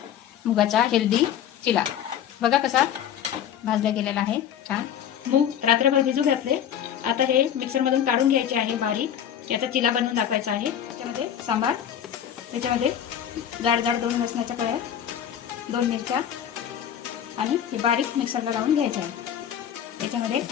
मुगाचा हेल्दी चिला। बघा कसा भाजला गेलेला आहे छान। मूग रात्रभर भिजू घातले, आता हे मिक्सरमधून काढून घ्यायचे आहे बारीक। याचा चिला बनवून दाखवायचा आहे। त्याच्यामध्ये सांबार, त्याच्यामध्ये जाड जाड 2 लसणाच्या कळ्या, 2 मिरच्या आणि हे बारीक मिक्सरला लावून घ्यायचे आहे। त्याच्यामध्ये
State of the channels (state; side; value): quieter; right; 9.7 dB